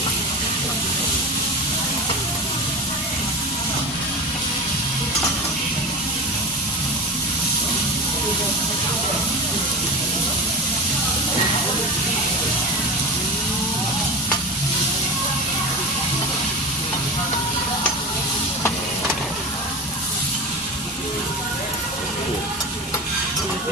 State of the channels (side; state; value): both; normal; correlation 0.26